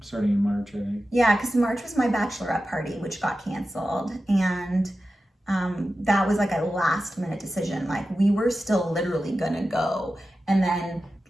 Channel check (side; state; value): both; normal; correlation 0.93